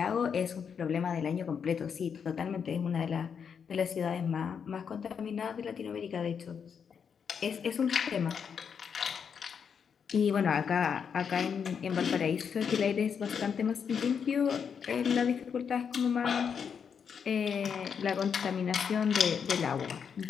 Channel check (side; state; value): right; quieter; 6.9 dB